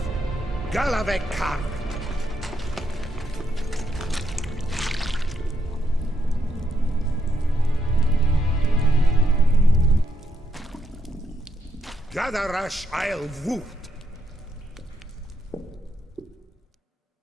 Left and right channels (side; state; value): both; normal; correlation 0.79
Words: Galavekar. Gadarash I'll Woot.